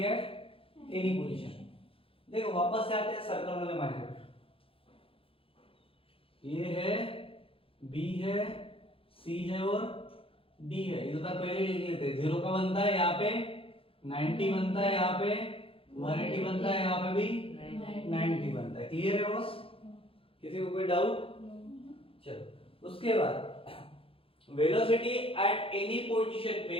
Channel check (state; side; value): late; right; 0.27 ms